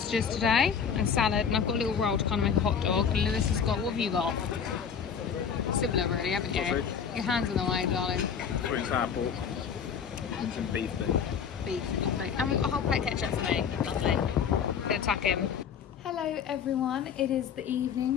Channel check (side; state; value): right; quieter; 7.1 dB